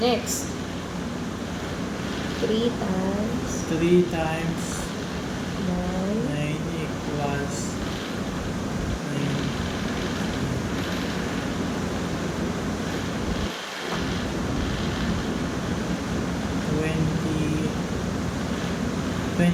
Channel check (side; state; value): both; identical; correlation 1.00